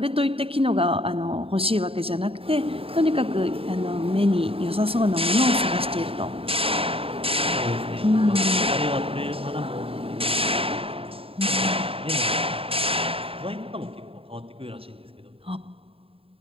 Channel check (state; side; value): late; left; 0.27 ms